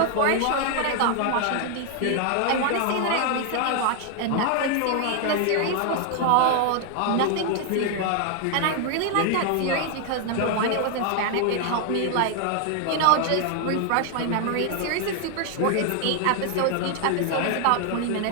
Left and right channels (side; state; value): both; different; correlation 0.00